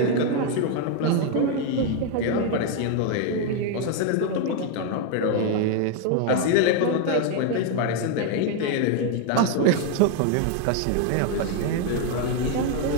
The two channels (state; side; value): different; both; correlation 0.01